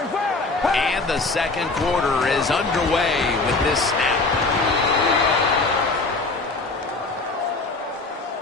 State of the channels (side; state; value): right; quieter; 3.6 dB